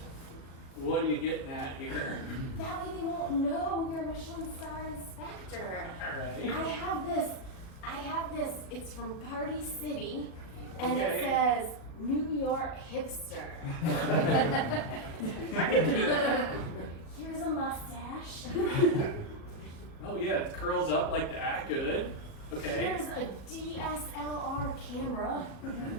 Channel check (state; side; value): late; right; 37 ms